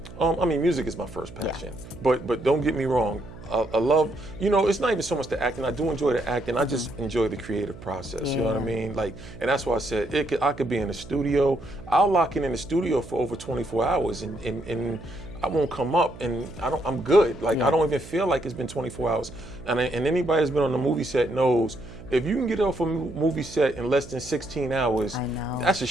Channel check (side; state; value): right; noise; hum, 16 dB below the sound